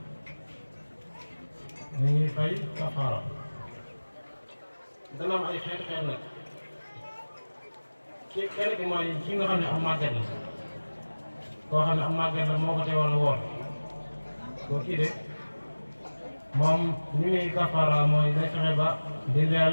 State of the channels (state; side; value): inverted; both; correlation -1.00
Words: dañuy fay kafaara dana am ay xeet nag kenn ki mooy ki nga xam ne am màgget la koo xam ne am màgget la moo ko teewal woor koo kii de moom ni muy kafaara mooy day fexe ba di